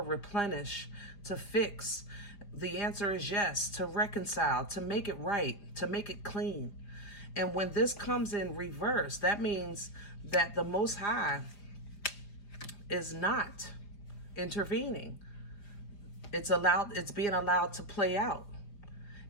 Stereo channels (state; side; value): late; right; 4.9 ms